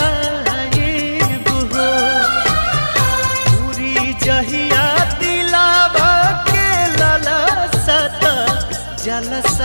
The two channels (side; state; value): both; inverted; correlation -1.00